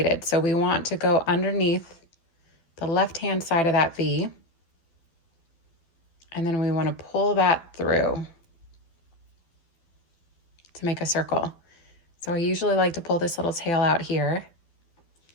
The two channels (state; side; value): late; right; 12 ms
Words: So we want to go underneath the left-hand side of that V. And then we want to pull that through to make a circle. So I usually like to pull this little tail out here.